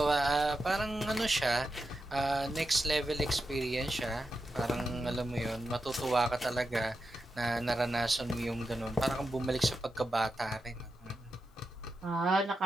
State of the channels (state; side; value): normal; both; correlation 0.88